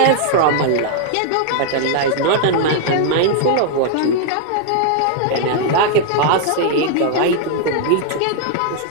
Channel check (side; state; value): both; different; correlation -0.01